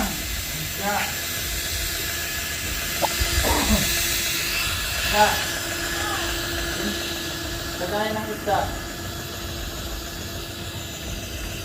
Ya. Lagayan ng isda.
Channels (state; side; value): identical; both; correlation 1.00